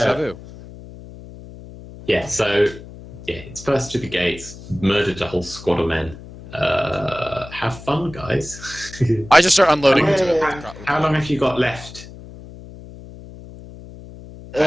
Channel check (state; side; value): noise; left; hum, 16 dB below the sound